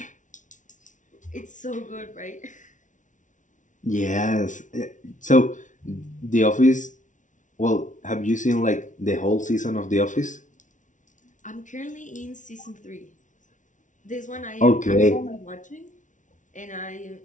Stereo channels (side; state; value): right; late; 0.37 ms